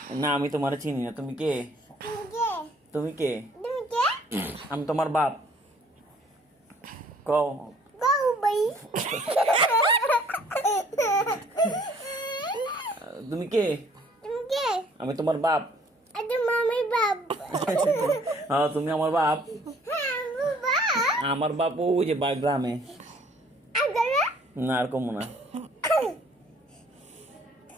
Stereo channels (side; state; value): both; normal; correlation 0.58